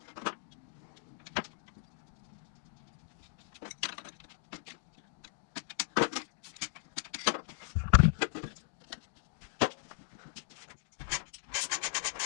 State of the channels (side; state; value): right; silent; digital silence